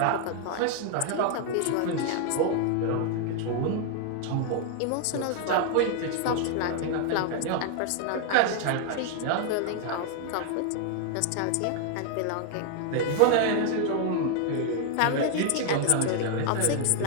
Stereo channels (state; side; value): different; both; correlation 0.00